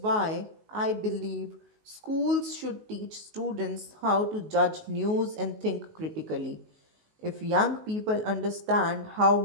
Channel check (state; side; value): late; left; 19 ms